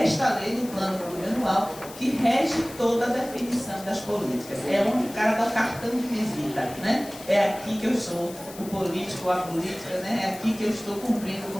esta lei do plano plurianual, que rege toda a definição das políticas. É onde o cara dá o cartão de visita, né? É aqui que eu sou o político ou a política, né? É aqui que eu estou cumprindo com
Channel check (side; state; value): left; noise; hiss, 16 dB below the sound